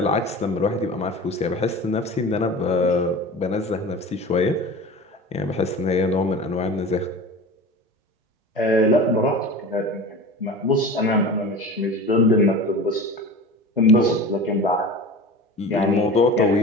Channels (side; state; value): both; normal; correlation 0.34